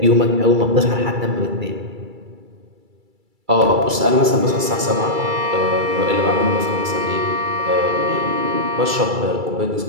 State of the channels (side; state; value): left; late; 2.3 ms